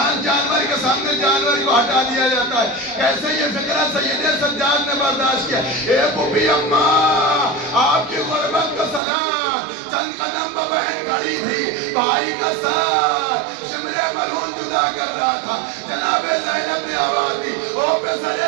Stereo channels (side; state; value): left; drops out; at 9.0 s